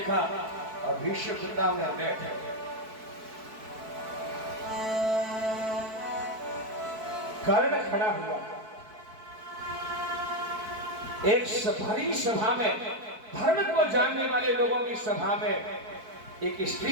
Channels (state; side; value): late; left; 4.6 ms